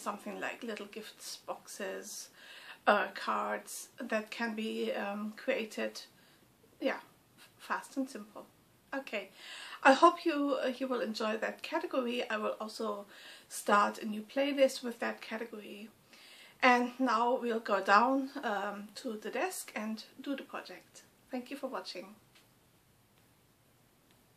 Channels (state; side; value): identical; both; correlation 1.00